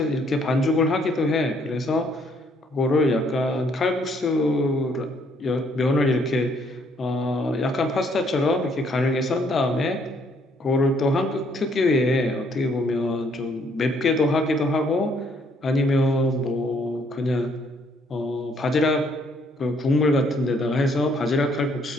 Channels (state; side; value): normal; both; correlation 0.67